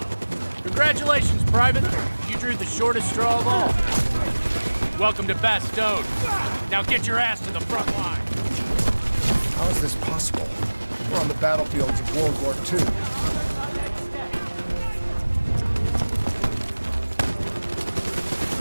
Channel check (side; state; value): both; inverted; correlation -1.00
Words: Congratulations, Private. You drew the shortest straw of all. Welcome to Bastogne. Now get your ass to the front line. How is this possible? We're on the battlefields of World War II.